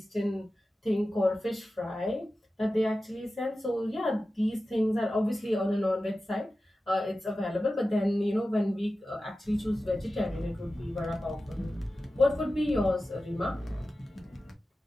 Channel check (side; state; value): both; normal; correlation 0.94